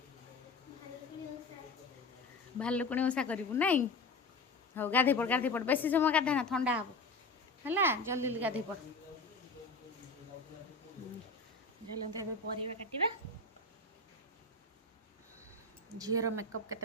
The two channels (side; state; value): right; quieter; 3.5 dB